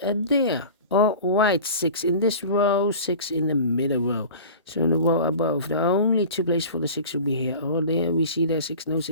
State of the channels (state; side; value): inverted; both; correlation -0.38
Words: there. All right, 6 in this row, 6 in the middle row. So in the row above, the only 2 places for the 6 should be here or there. We see there 6, no